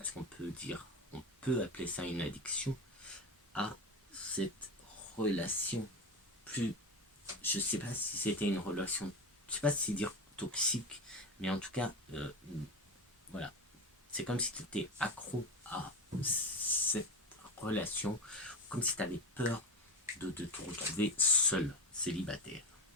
qu'on peut appeler ça une addiction à cette relation. Plus, je sais pas si c'était une relation, je sais pas si dire toxique, mais en tout cas, voilà, c'est comme si tu étais accro à cette relation, comme si tu avais peur de te retrouver seul, célibataire.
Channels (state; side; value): normal; both; correlation 0.22